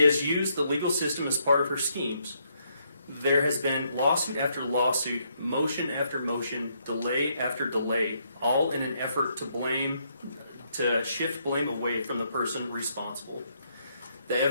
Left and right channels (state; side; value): inverted; both; correlation -0.74